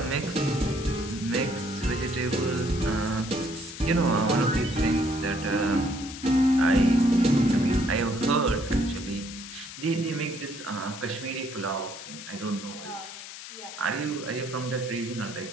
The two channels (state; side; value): noise; left; hiss, 12 dB below the sound